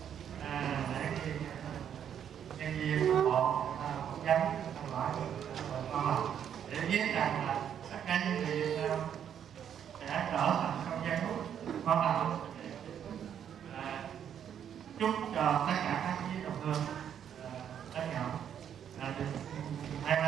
để khi nhân viên bộ phỏng vấn hỏi con để biết rằng là tất cả những gì sẽ trở thành không gian hút quan trọng. Chúc cho tất cả các quý đồng hương đã nhận được may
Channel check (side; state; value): left; quieter; 9.0 dB